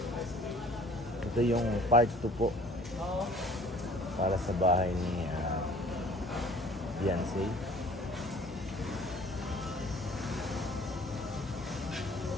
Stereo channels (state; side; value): normal; both; correlation 0.52